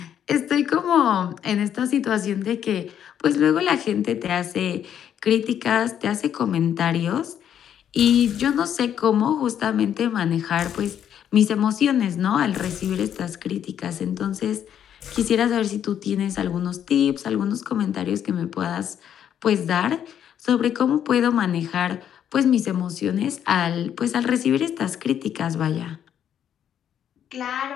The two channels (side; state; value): right; quieter; 9.5 dB